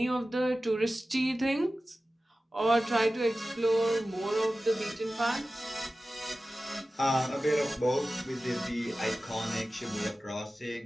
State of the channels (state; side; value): normal; both; correlation 0.95